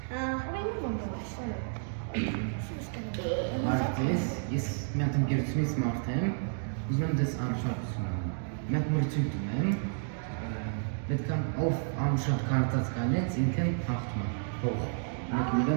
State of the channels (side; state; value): left; silent; digital silence